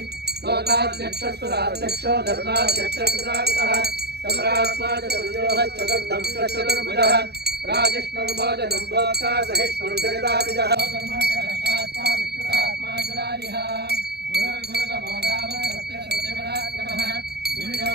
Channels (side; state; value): left; late; 0.48 ms